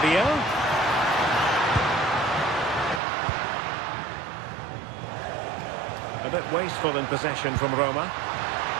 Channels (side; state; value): left; drops out; at 3.0 s